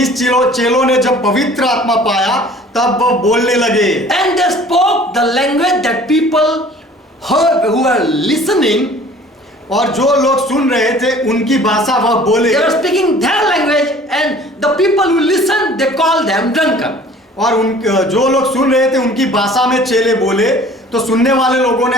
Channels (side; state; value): both; normal; correlation 0.49